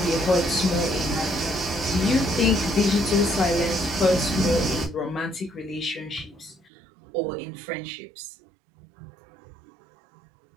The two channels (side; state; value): left; drops out; at 6.7 s